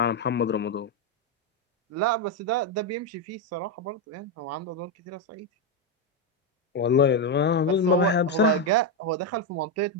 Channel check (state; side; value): normal; both; correlation 0.05